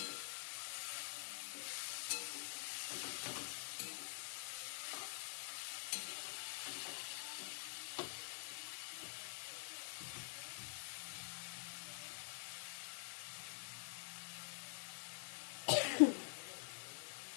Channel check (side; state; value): right; silent; digital silence